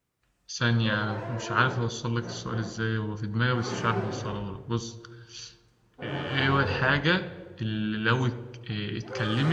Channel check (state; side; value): identical; both; correlation 1.00